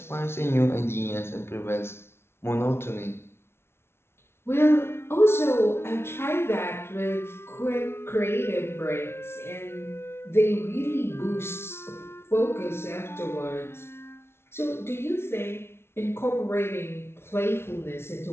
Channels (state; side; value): late; right; 0.12 ms